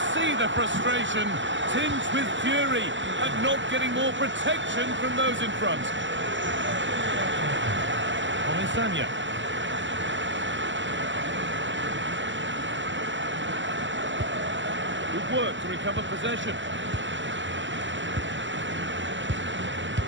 see the frustration, tinged with fury, at not getting more protection from those in front. Sanya. Good work to recover possession.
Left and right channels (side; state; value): left; late; 0.54 ms